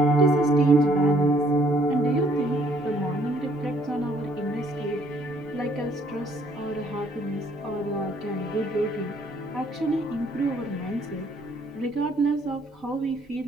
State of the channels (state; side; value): normal; both; correlation 0.64